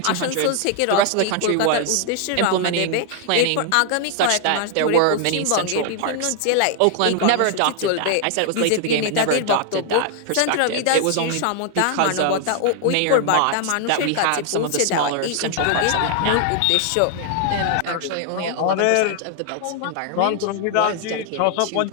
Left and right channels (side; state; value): both; different; correlation 0.00